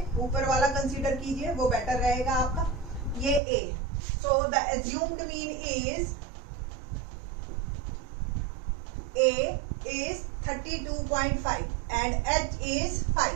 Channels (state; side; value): drops out; left; at 3.4 s